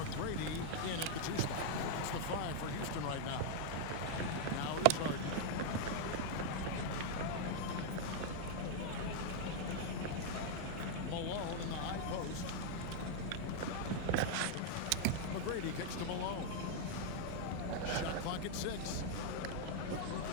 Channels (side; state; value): both; different; correlation 0.00